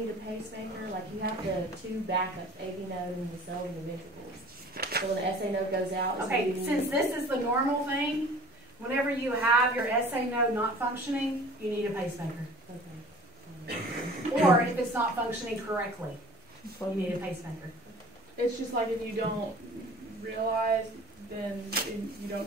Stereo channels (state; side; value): normal; both; correlation 0.46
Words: a pacemaker? Like, you have the two backups, AV node and the cells and the ventricles. So when the SA node goes out... Okay, since this is the normal thing, whenever you have your SA node not functioning, you need a pacemaker. Okay. Or if it's not functioning correctly, you need a pacemaker. It's just like if you don't realize, then you